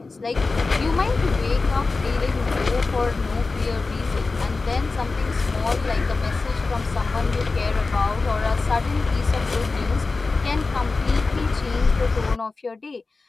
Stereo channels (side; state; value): right; quieter; 3.8 dB